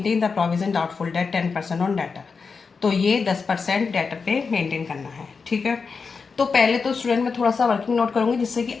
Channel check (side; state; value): right; quieter; 5.0 dB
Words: the provision doubtful debt 10% on debtor. तो ये 10% डेटर पे मेंटेन करना है, ठीक है। तो पहले तो स्टूडेंट में थोड़ा सा वर्किंग नोट करूंगी जिससे कि